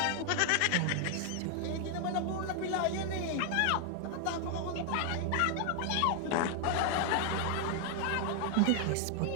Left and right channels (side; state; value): both; different; correlation 0.00